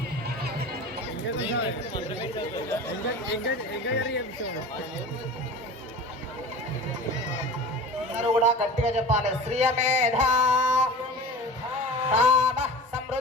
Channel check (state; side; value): normal; both; correlation 0.36